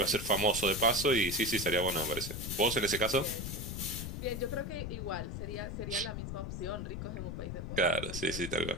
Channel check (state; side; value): noise; left; rumble, 5 dB below the sound